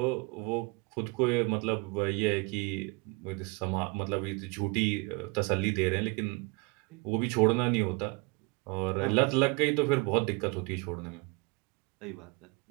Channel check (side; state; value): left; quieter; 29.6 dB